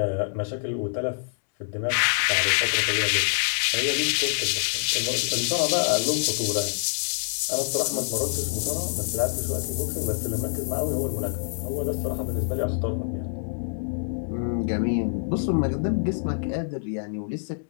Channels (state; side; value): silent; right; 61 dB below the other